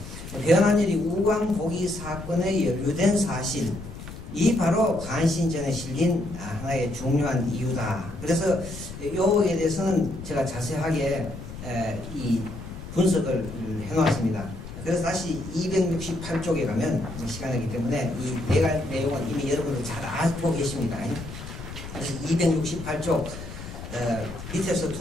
변환열이 우광복위 사건에 연루된 사실. 이 바로 간신전에 실린 하나의 중요한 이유다. 그래서 요에 대해서는 제가 자세하게 이 분석을 해놓았습니다. 그래서 다시 268쪽에 가면 시간이기 때문에 이 내용은 이미 여러분들 잘 알고 계십니다. 그래서 268쪽 밑에서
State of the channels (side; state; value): left; noise; rumble, 11 dB below the sound